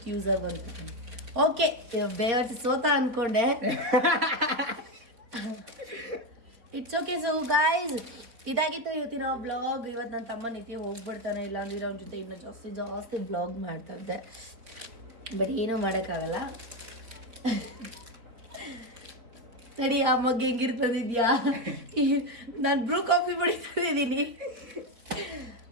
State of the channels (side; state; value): left; late; 4.4 ms